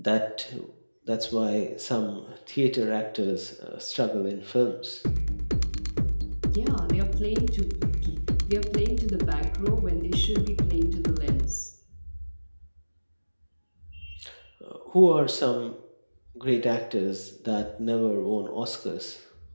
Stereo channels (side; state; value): both; inverted; correlation -1.00